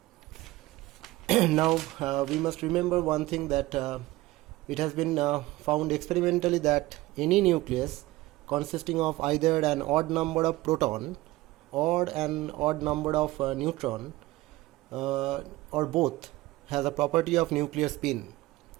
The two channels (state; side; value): quieter; left; 18.5 dB